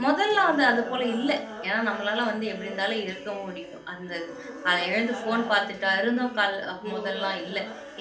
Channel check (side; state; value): both; identical; correlation 1.00